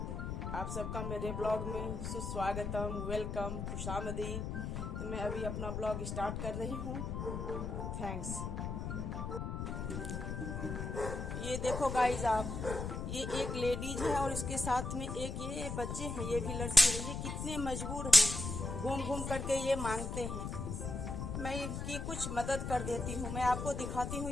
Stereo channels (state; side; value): noise; left; rumble, 4 dB below the sound